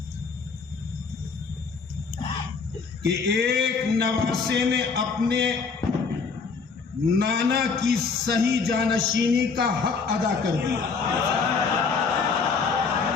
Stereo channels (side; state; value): right; quieter; 5.0 dB